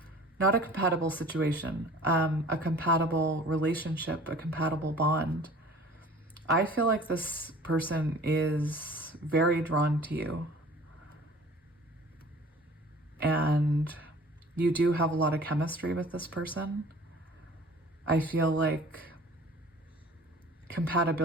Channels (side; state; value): both; normal; correlation 0.47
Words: not a compatible situation, a compatible relationship, a compatible bond. I feel like this person is very drawn to you. And you do have a lot of chemistry with this person. I feel like